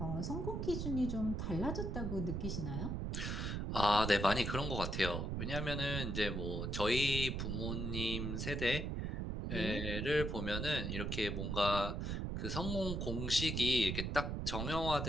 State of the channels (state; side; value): noise; right; rumble, 2 dB below the sound